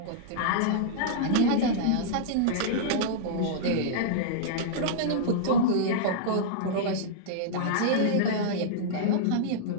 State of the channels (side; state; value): both; different; correlation -0.03